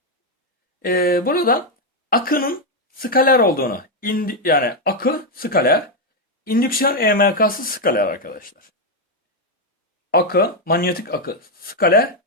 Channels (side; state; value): both; normal; correlation 0.03